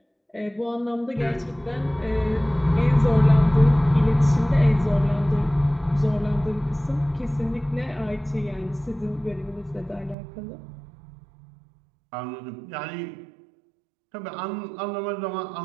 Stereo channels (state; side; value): drops out; left; at 10.2 s